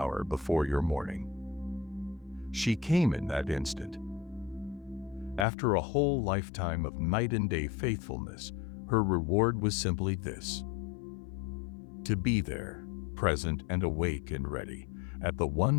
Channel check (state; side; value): drops out; right; at 5.5 s